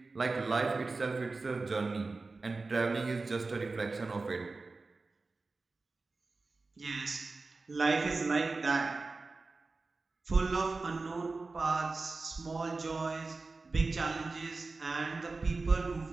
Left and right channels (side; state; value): left; quieter; 3.7 dB